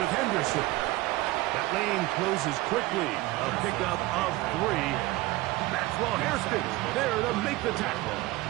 Henderson. That lane closes quickly. A pickup of 3. Maxwell Hairston there to make the tackle.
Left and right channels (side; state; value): left; quieter; 19.0 dB